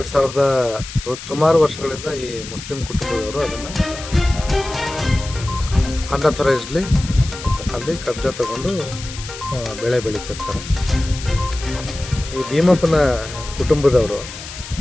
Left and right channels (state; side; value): noise; left; hiss, 12 dB below the sound